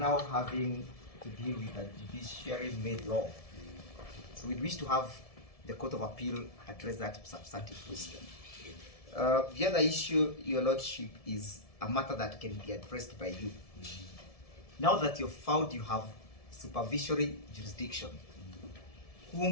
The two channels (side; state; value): right; late; 1.7 ms